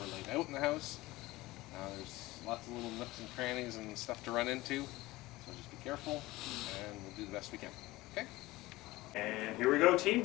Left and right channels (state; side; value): quieter; right; 19.2 dB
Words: laid out in the house. There's lots of little nooks and crannies and stuff to run into, so just be careful, and we'll do the best we can. Okay? And here we go,